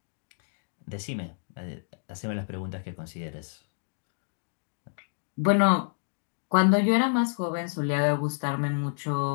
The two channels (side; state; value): right; silent; digital silence